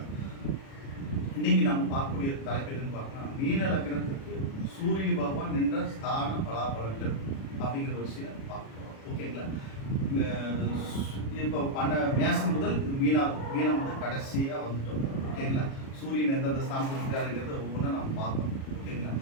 இன்னைக்கு நம்ம பார்க்கக்கூடிய தலைப்பு எதுன்னு பார்த்தோம்னா, மீன லக்னத்துக்கு சூரிய பகவான் நின்ற ஸ்தான பலாபலன்கள் அப்படிங்கிற ஒரு சில பார்க்கலாம். ஓகேங்களா? இப்போ மேசம் முதல் மீனம் வந்து கடைசியாக வந்துட்டோம். ஓகேங்களா? சூரியன் எந்தெந்த ஸ்தானத்தில் இருக்கிறாருங்கிறத ஒவ்வொன்றா நம்ம பார்க்கணும். ஓகேங்களா?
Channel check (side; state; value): right; late; 37 ms